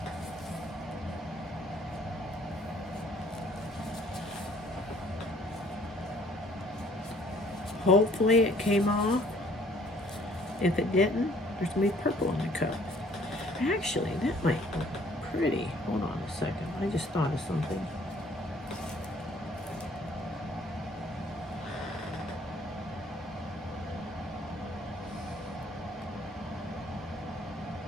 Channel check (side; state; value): both; normal; correlation 0.58